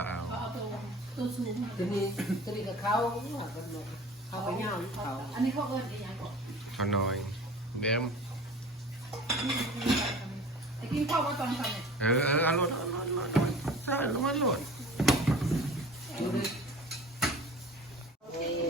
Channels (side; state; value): both; normal; correlation 0.41